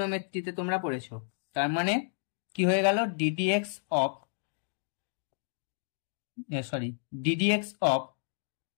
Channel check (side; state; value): right; silent; digital silence